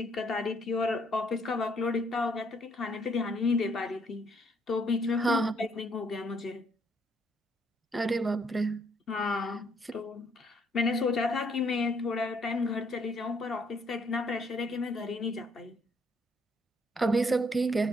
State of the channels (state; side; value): normal; both; correlation 0.68